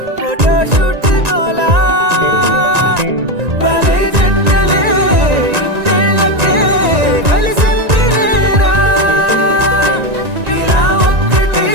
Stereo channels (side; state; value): left; late; 1.9 ms